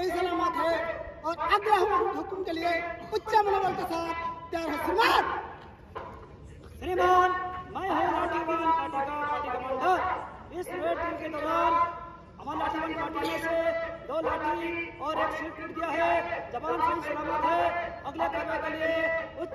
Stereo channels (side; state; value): both; identical; correlation 1.00